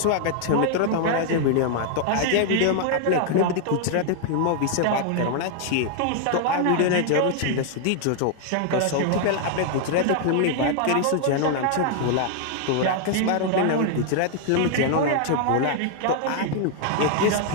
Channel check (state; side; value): different; both; correlation 0.00